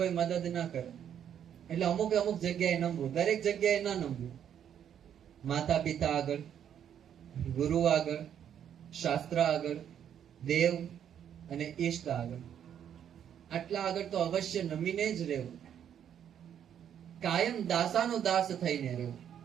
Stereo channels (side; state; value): left; quieter; 9.2 dB